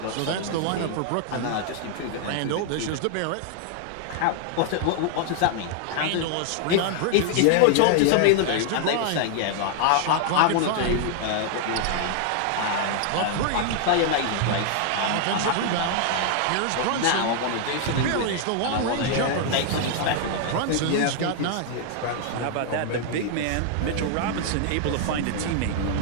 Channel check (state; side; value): different; both; correlation 0.00